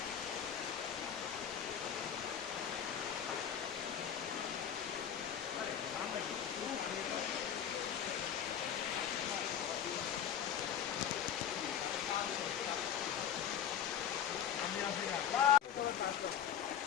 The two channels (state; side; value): quieter; right; 9.0 dB